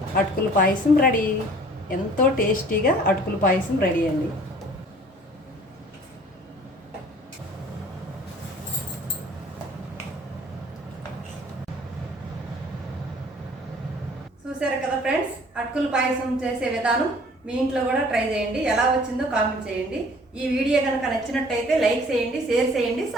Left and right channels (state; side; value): normal; both; correlation 0.52